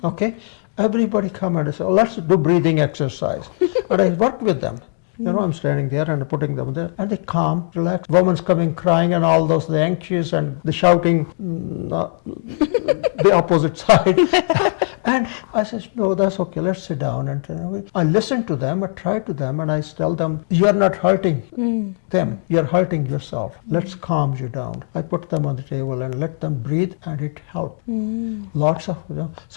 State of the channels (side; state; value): right; silent; digital silence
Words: Okay. Everybody come and say, oh, let's do breathing exercise. And I work with them. You know, I'm standing there and putting them there, and they calm, relax. Woman's coming crying and all those, the anxious and the shouting, the opposite side. And I said, no, that's okay, let's sit down. And I listen to them, I try to them, and I tell them, you're not hurting them, you're hurting yourself. Let's calm you down. I put them on the table and let them breathe, and it helped. Lots of,